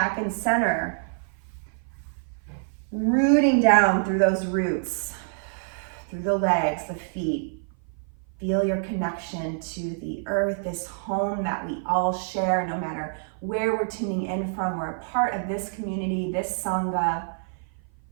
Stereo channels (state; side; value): silent; left; 56 dB below the other